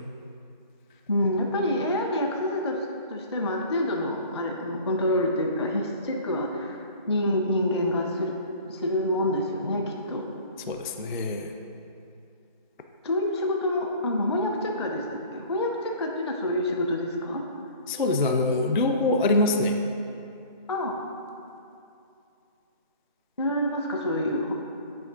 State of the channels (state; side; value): inverted; both; correlation -0.44